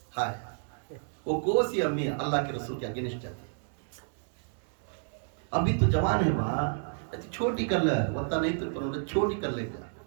ہائے وہ کوسی امی اللہ کے رسول کے اگینسٹ جاتی. ابھی تو جوان ہے وہاں، چھوٹی کر لے وقتا نہیں تو چھوٹی کر لے گا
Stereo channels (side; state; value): left; silent; digital silence